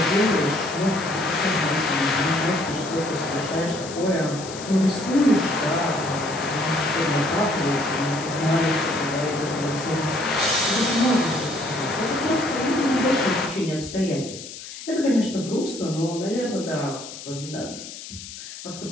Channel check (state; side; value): noise; left; hiss, 12 dB below the sound